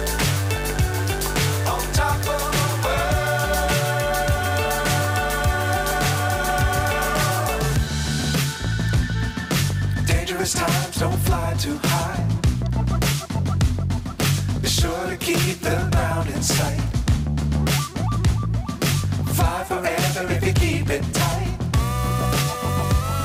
Times don't fly too high. Be sure to keep the ground in sight. Fly forever if you keep it tight.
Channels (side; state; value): both; identical; correlation 1.00